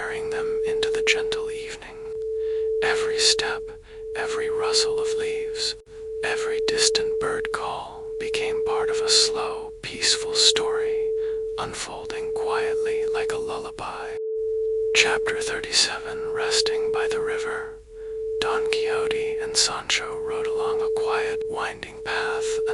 them into the gentle evening. Every step, every rustle of leaves, every distant bird call became part of a slow, peaceful story, unfolding quietly like a lullaby. Chapter 37. Resting by the River. Don Quixote and Sancho rode along a quiet, winding path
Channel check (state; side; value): identical; both; correlation 1.00